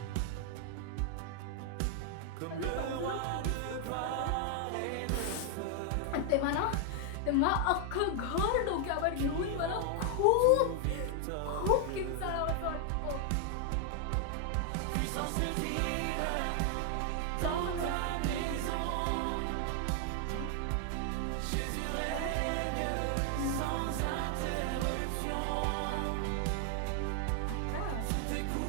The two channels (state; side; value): different; both; correlation 0.00